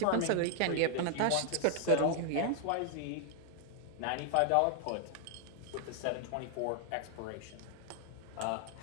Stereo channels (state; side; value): different; both; correlation -0.01